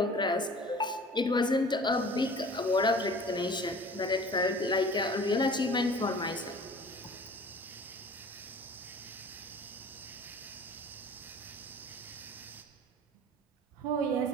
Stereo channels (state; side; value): normal; both; correlation 0.44